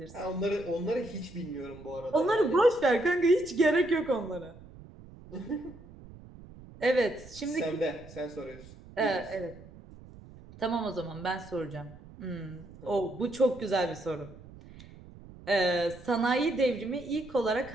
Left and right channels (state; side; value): noise; right; rumble, 19 dB below the sound